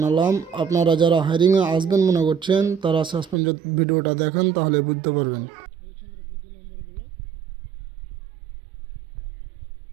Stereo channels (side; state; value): left; drops out; at 3.4 s